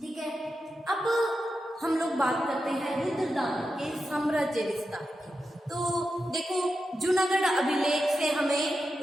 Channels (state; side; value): normal; both; correlation 0.89